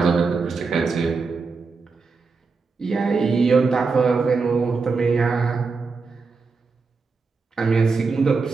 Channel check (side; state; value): left; quieter; 4.5 dB